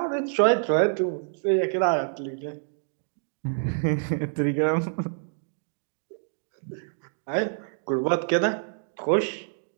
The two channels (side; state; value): left; silent; digital silence